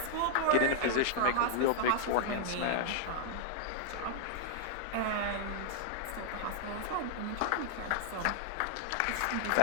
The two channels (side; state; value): both; different; correlation 0.00